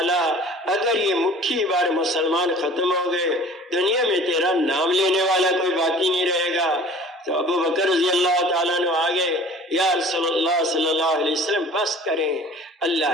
اگر یہ مٹھی بار مسلمان ختم ہو گئے دنیا میں تیرا نام لینے والا کوئی باقی نہیں رہے گا۔ تو ابو بکر رضی اللہ تعالیٰ نے آگے، یا رسول اللہ صلی اللہ علیہ وسلم بس کریں،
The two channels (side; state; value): both; normal; correlation 0.46